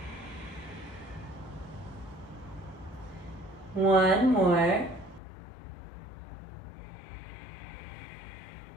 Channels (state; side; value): drops out; right; at 5.2 s